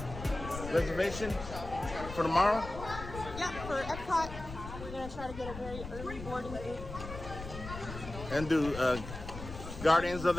Reservation for tomorrow? Yeah, for Epcot, we're gonna try to get a very early boarding group. And do Guardians of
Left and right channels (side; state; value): left; noise; rumble, 10 dB below the sound